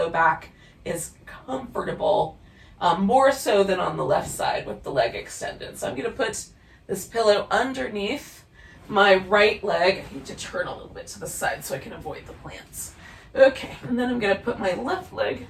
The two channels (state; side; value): identical; both; correlation 1.00